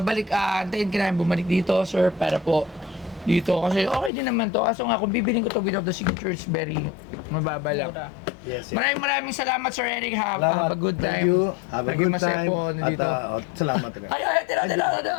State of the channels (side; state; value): right; drops out; at 4.1 s